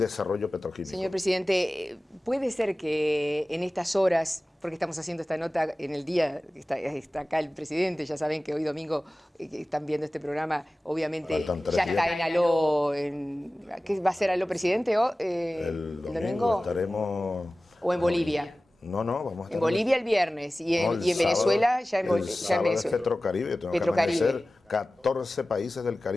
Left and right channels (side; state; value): both; normal; correlation 0.97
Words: petroquímico. Señor presidente, ¿puede ser que en estas horas, porque estamos haciendo esta nota en el día, está acá el presidente, ya saben que hoy domingo que están viendo este programa, obviamente ya está en Aló, ¿qué va a ser Aló presidente? El domingo estaremos... ¿O en Bolivia? No, vamos a estar en Bolivia el viernes y en Venezuela ya en Venezuela. Es Petrocaribe, Petrocaribe. 14 países del